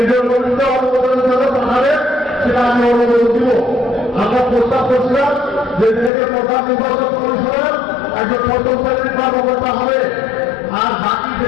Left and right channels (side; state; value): right; drops out; at 6.1 s